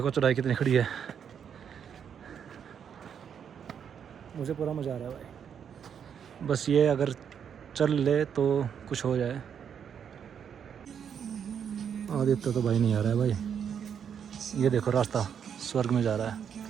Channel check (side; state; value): left; quieter; 7.9 dB